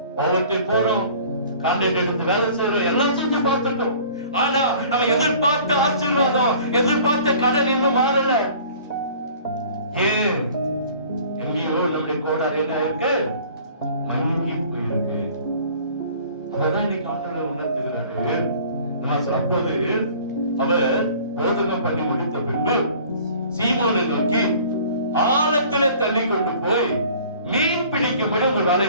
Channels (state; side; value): inverted; both; correlation -0.49